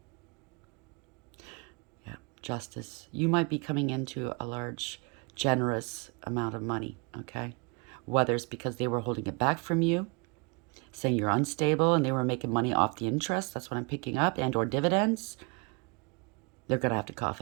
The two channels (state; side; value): quieter; left; 32.7 dB